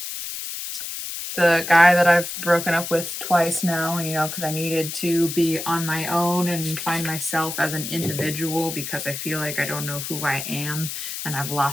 the guy that I've broken up with twice now, you know, because I needed to be on my own and find myself as an individual because I feel like I don't know who I am and I've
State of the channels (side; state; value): left; noise; hiss, 6 dB below the sound